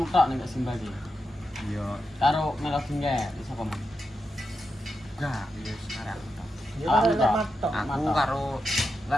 tok ning Simba iki. Iya, Karo Melodi nggak iso paman. enggak, ya sekarang. Aku Matok. karo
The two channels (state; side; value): normal; both; correlation 0.87